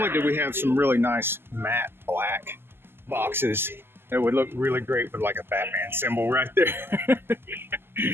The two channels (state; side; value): late; left; 0.11 ms